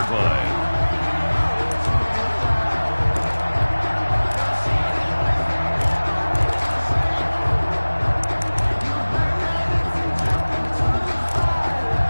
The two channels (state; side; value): inverted; both; correlation -1.00